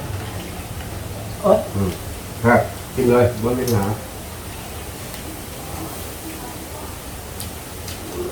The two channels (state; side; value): identical; both; correlation 1.00